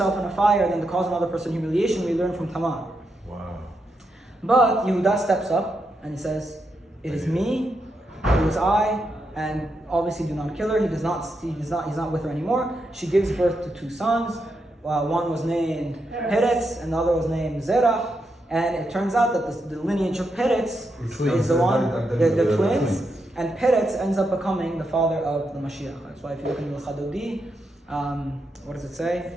in a fire than to cause another person humiliation. We learn from Tamar. Wow. But Yehuda steps up and he says, it is me, it was I, and obviously do not kill her. He's not with her anymore. She gives birth to two sons. One was named Peretz and the other was named Zerach. And it turns out that the lineage of Peretz is the one, the twins. And Peretz ends up becoming the father of the Mashiach. That's why if you look in the Chadodi, what does it say?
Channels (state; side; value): normal; both; correlation 0.83